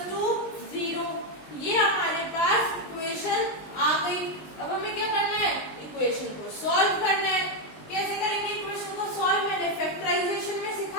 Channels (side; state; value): right; late; 20 ms